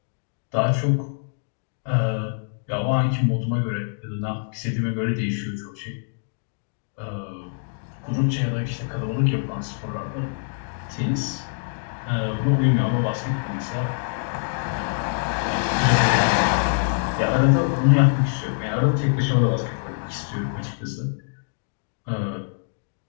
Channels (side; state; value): right; silent; digital silence